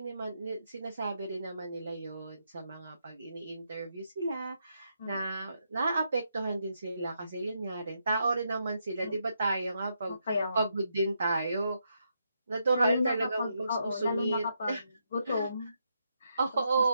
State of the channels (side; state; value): both; inverted; correlation -0.80